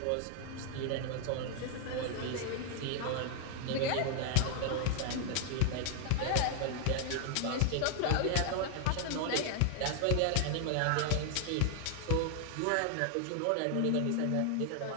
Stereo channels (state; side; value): different; both; correlation 0.00